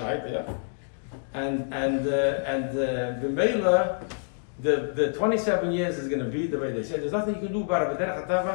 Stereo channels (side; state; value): right; silent; digital silence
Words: yeah. And the mailer, the 27 years is going to be the way they say. There's nothing you can do about it. But Derech